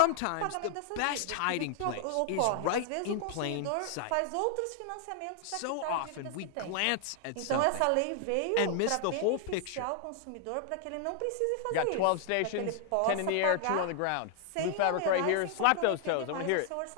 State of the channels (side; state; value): both; different; correlation 0.00